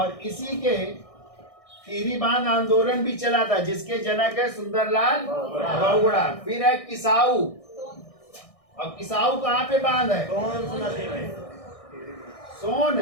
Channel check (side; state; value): right; late; 1.6 ms